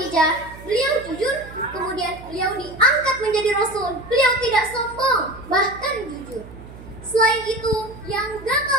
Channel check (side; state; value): right; noise; hum, 17 dB below the sound